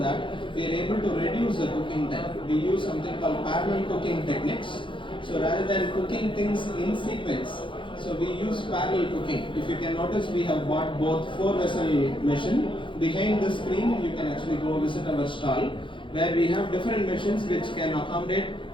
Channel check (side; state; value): right; late; 0.24 ms